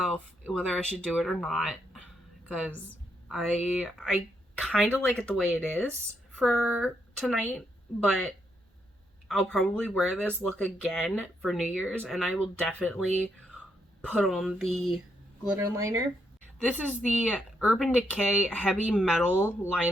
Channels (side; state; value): both; normal; correlation 0.78